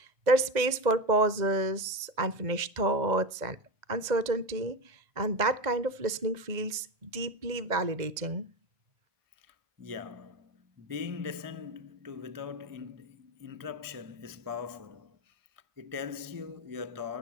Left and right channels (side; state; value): left; late; 2.0 ms